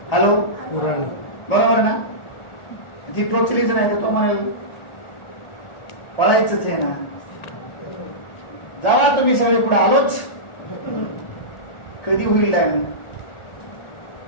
हॅलो, बरोबर ना? ती टोचलीच नाही तर तो म्हणाल पळायचंच आहे ना. जावा तुम्ही सगळे पुढे, आलोच. कधी होईल टाइम?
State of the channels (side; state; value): right; late; 1.4 ms